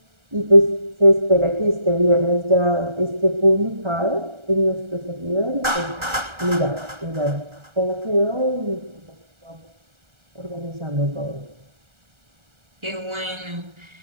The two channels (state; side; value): late; left; 1.3 ms